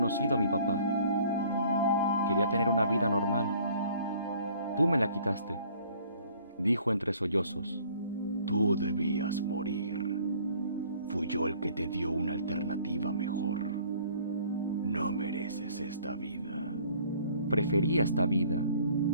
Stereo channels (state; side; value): inverted; both; correlation -0.55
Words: a mi papá. Quería tener una vida normal. Tú me la quitaste, dijo entre sollozos. Tú debías morir. Fui yo el que te dio una alternativa mejor. No mereces esta vida. Prefería esta vida.